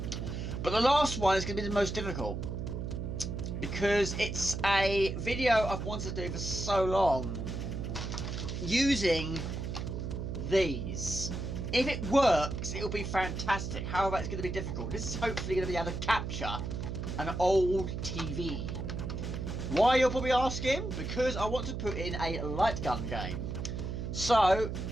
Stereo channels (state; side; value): noise; right; hum, 4 dB below the sound